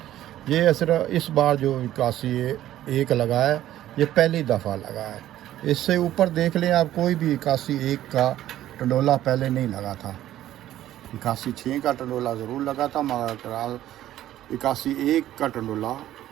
ये सिर्फ इस बार जो 81 एक लगा है, ये पहली दफ़ा लगा है। इससे ऊपर देख लें आप, कोई भी 81 एक का टंडोला पहले नहीं लगा था। 81 6 का टंडोला ज़रूर लगा था, मगर 81 एक का टंडोला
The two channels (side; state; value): left; quieter; 13.1 dB